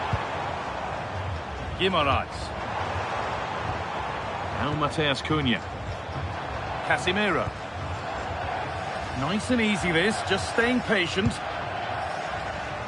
Guimaraes. Now Mateus Cunha. Casemiro. Nice and easy this, just staying patient.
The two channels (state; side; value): identical; both; correlation 1.00